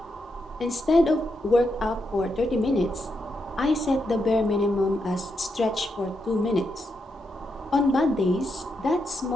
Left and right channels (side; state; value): both; normal; correlation 0.83